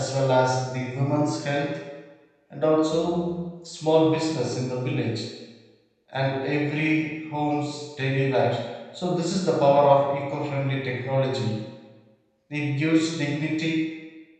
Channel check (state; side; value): identical; both; correlation 1.00